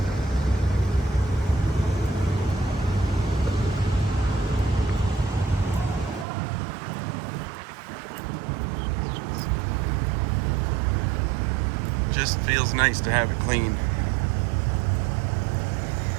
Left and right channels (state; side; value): drops out; left; at 6.2 s